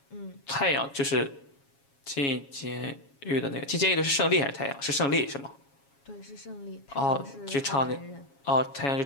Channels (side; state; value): right; late; 7.2 ms